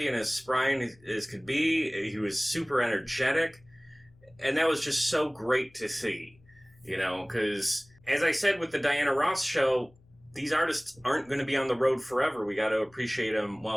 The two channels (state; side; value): noise; left; hum, 29 dB below the sound